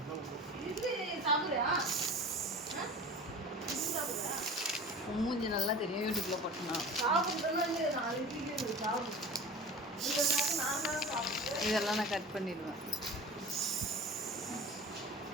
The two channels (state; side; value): normal; both; correlation 0.37